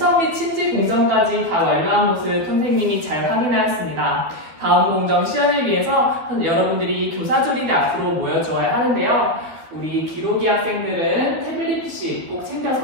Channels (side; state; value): left; late; 12 ms